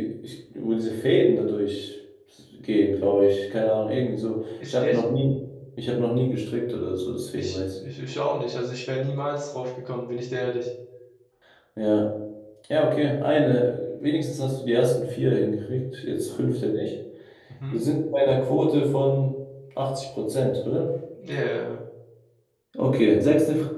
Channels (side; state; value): both; identical; correlation 1.00